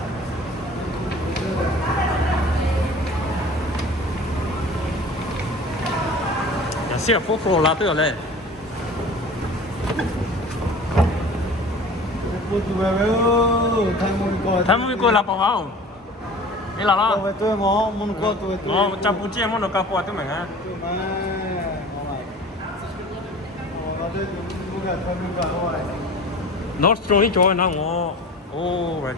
xe phố phố là tới rồi tham mui coi là bao không đây là lo tôi ngó muốn coi tôi ngó chăm bút chia muốn nó cao qua tôi mình á Nostro đi chơi nó ngó oh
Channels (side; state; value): both; normal; correlation 0.41